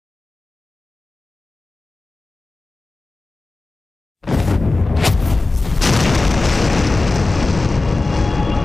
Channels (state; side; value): quieter; right; 3.3 dB